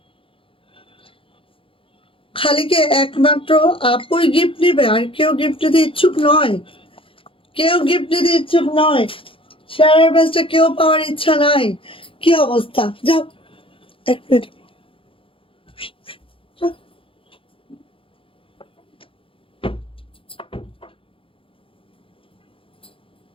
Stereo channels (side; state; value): right; late; 0.26 ms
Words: খালি কি একমাত্র আপুই গিফট নিবে, আর কেউ গিফট নিতে ইচ্ছুক নয়? কেউ গিফট নিতে ইচ্ছুক নয়? শেয়ারের ব্যাচটা কেউ পাওয়ার ইচ্ছা নাই? কি অবস্থা? যাও, এক মিনিট।